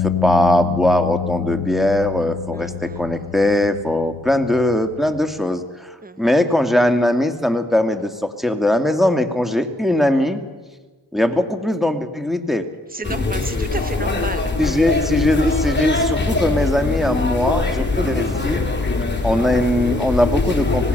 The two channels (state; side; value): normal; both; correlation 0.74